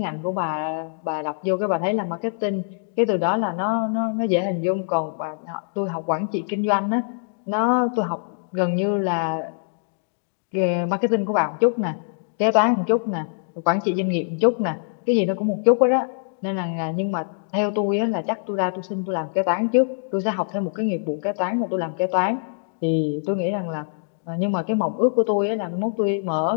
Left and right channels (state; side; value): silent; right; digital silence